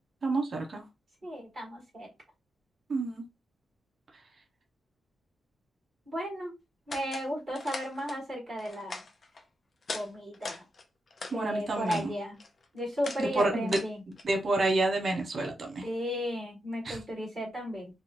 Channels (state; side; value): normal; both; correlation 0.85